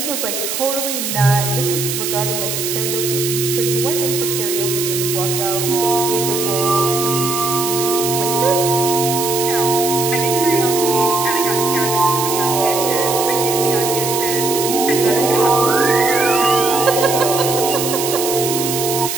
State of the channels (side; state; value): right; noise; hiss, 3 dB below the sound